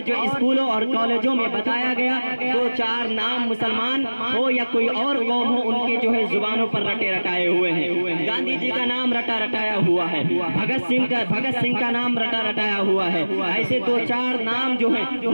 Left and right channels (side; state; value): both; inverted; correlation -1.00